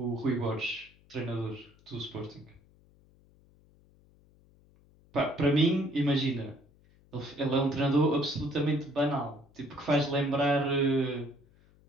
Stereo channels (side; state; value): left; noise; hum, 29 dB below the sound